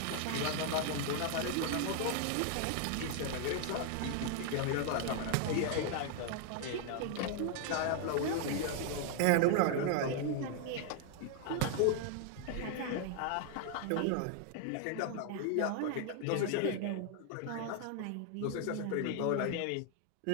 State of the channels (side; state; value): both; different; correlation 0.00